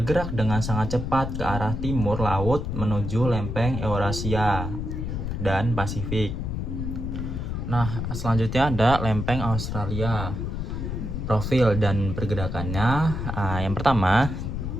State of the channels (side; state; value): left; noise; rumble, 4 dB below the sound